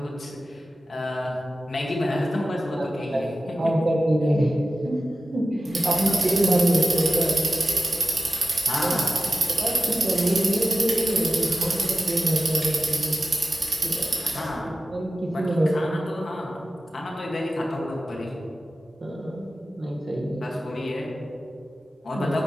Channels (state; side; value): normal; both; correlation 0.94